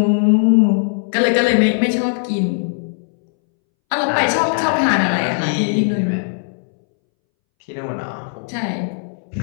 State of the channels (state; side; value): silent; right; 65 dB below the other